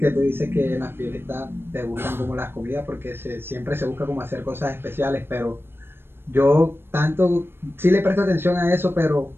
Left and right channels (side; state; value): left; late; 0.11 ms